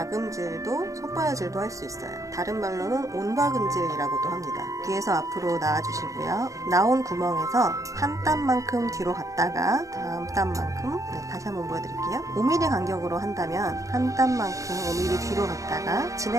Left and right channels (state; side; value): late; left; 0.16 ms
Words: 손바느질도 할 수 있어요. 다른 말로는 온박음질이라고도 합니다. 뒤에서 앞으로 나와주시고요. 나온 구멍에서 한 땀만큼 뒤로 갔다가 다음 땀만큼 다시 한번 보여드릴게요. 5mm 간격으로 한다면 한 땀만큼 5mm 뒤로 갔다가